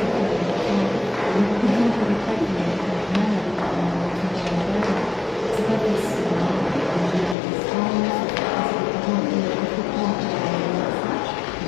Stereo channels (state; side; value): drops out; right; at 7.4 s